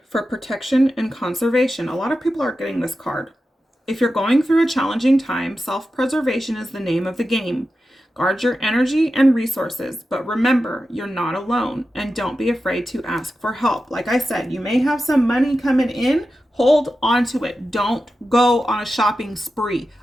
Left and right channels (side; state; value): both; normal; correlation 0.91